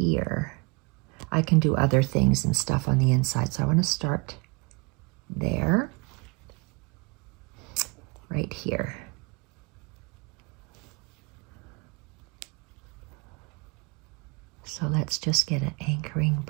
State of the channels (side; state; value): left; quieter; 30.0 dB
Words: I can do other things and stuff on the inside. So I want to start there, right here. So let's just get an anchoring